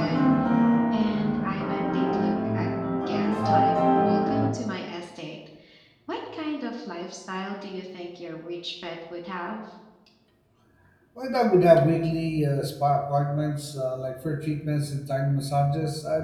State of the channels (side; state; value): both; identical; correlation 1.00